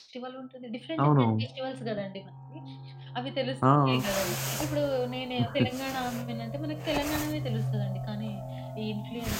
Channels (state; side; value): identical; both; correlation 1.00